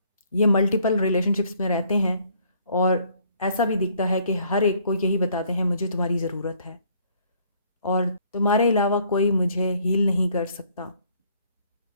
ये मल्टीपल रिलेशनशिप्स में रहते हैं और ऐसा भी दिखता है कि हर एक को यही बताते हैं मुझे तुम्हारी ज़रूरत है और तुम्हारे अलावा कोई मुझे हील नहीं कर सकता।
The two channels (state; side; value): inverted; both; correlation -0.63